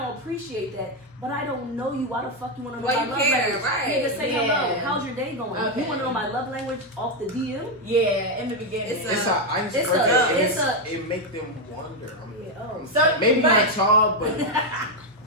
appreciate that. But I don't know you. Why the fuck you want to know my love language? Right. Nigga, say hello. How's your day going? Okay. You want to know my love language off the DM? Yeah, in the beginning. It's a icebreaker. It make them wonder. So maybe not y'all, but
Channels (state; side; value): normal; both; correlation 0.04